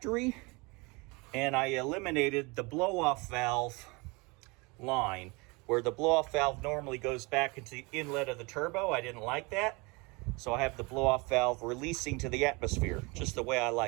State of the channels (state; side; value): quieter; left; 27.0 dB